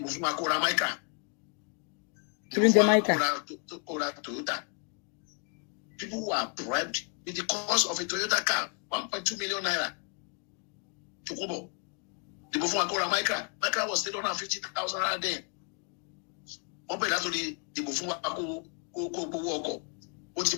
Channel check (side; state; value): right; quieter; 39.2 dB